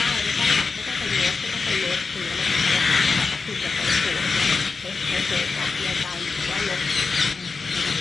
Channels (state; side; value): quieter; right; 4.5 dB